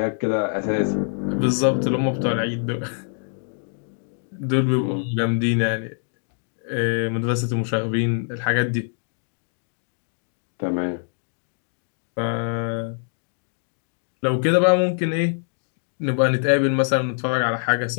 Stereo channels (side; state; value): right; silent; digital silence